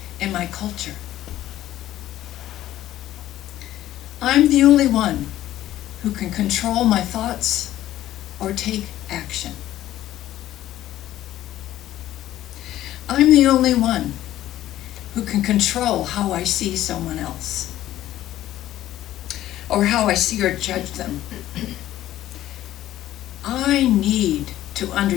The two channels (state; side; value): quieter; right; 13.6 dB